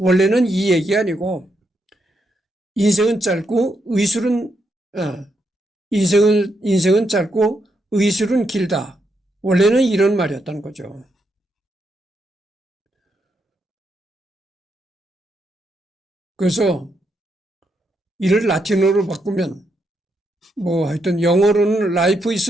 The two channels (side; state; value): both; normal; correlation 0.80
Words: 이 얘기 아니고 인생은 짧고 인생은 짧고 의술은 길다. 원래는 이런 말이었다는 거죠. 그래서 이를 라틴어로 바꾸면 하여튼 영어로는 life is